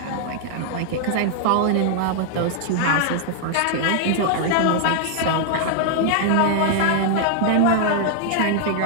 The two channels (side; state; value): both; different; correlation -0.01